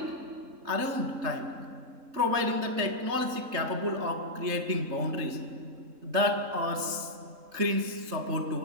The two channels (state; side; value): late; left; 3.7 ms